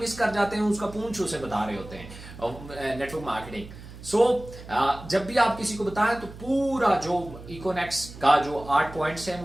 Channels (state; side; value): noise; right; hum, 15 dB below the sound